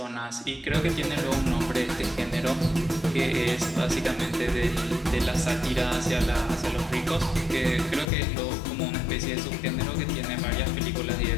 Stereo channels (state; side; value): drops out; right; at 8.1 s